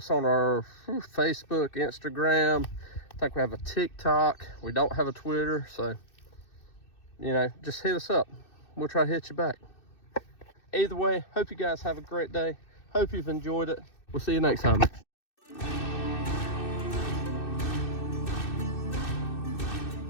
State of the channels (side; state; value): right; late; 2.6 ms